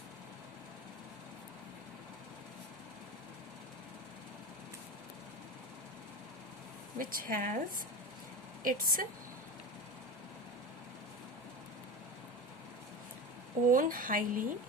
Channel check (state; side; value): normal; both; correlation 0.26